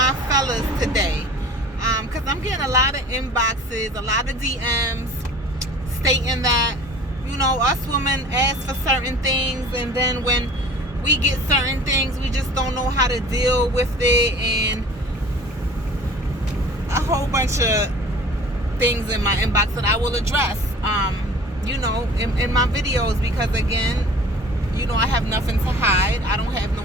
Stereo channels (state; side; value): normal; both; correlation 0.45